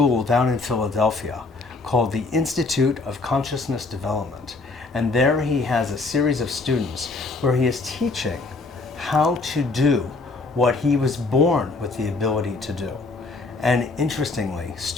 down in Philadelphia called the Institute of Consciousness Development. And there he has a series of students where he is teaching how to do what he was born with the ability to do. And interestingly,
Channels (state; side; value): quieter; right; 3.6 dB